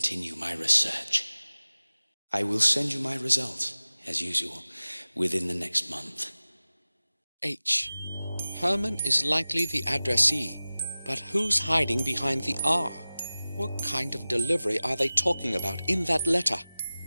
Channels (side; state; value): both; inverted; correlation -0.97